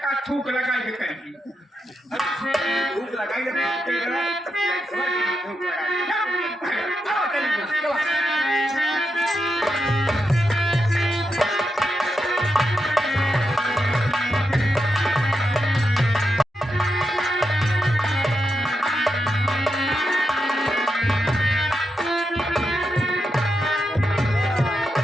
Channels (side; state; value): both; normal; correlation 0.86